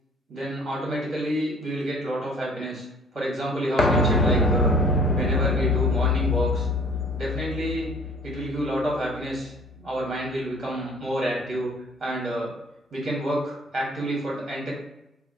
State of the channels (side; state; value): both; normal; correlation 0.53